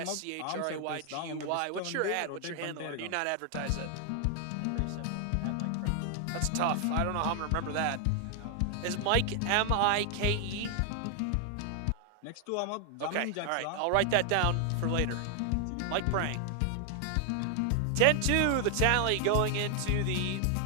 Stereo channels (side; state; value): both; different; correlation 0.00